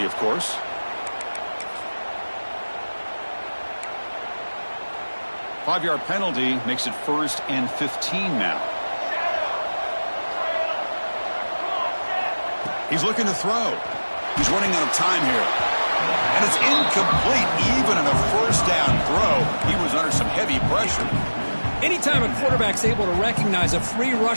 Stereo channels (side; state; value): both; inverted; correlation -1.00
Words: of course. Five-yard penalty makes it 1st and 15 now. He's looking to throw. He's running out of time here. And it's incomplete. Even on a first down throw, he was under some heavy pressure. Anytime a quarterback's able to recognize a free